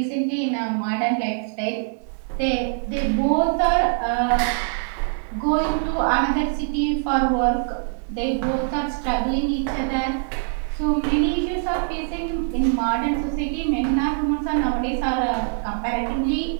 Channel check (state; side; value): silent; left; 59 dB below the other